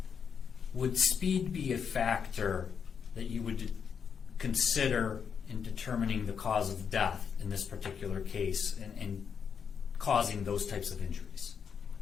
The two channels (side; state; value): right; quieter; 6.9 dB